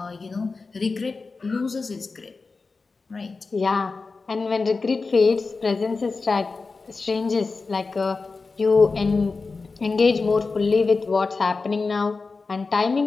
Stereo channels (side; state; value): right; quieter; 4.1 dB